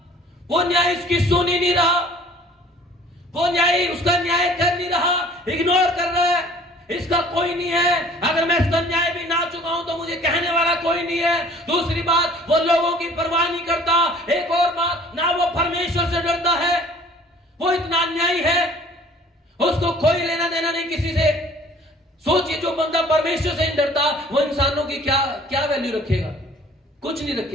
वो न्याय उसकी सुन ही नहीं रहा, वो न्याय उसका न्याय कर नहीं रहा, इग्नोर कर रहा है। इसका कोई नहीं है, अगर मैं इसका न्याय भी ना चुकाऊं तो मुझे कहने वाला कोई नहीं है। दूसरी बात, वो लोगों की परवाह नहीं करता। एक और बात, ना वो परमेश्वर से डरता है, वो इतना अन्यायी है, उसको कोई लेना देना नहीं किसी से। सोचिए, जो बंदा परमेश्वर से नहीं डरता, वो इंसानों की क्या वैल्यू रखेगा? कुछ नहीं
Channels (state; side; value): normal; both; correlation 0.51